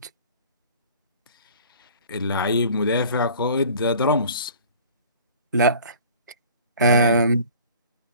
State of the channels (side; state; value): both; inverted; correlation -0.46